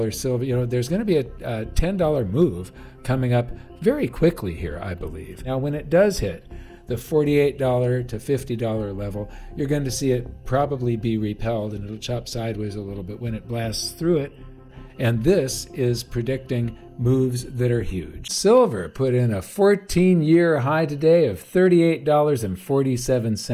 silver. There's going to be a $10 move coming up very quickly here, I believe. Now, when it does hit the $48 to $50 level, you're going to see it probably be repelled, and it'll chop sideways a little bit when it blasts through it. And this is predicting moves that are huge. Silver put in a 14-year high today of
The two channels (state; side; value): identical; both; correlation 1.00